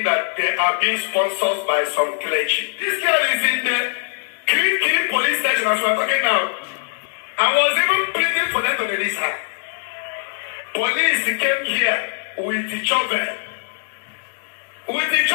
that they are being sponsored by some clergy. This girl is in the Kiri police station as we're talking now. I was even pleading for them to release her. Police came here with the shovel. With the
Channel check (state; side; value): silent; right; digital silence